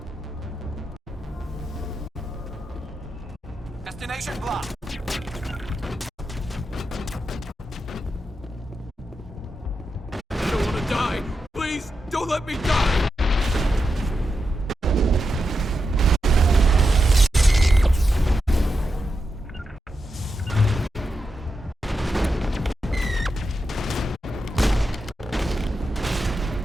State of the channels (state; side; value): normal; both; correlation 0.88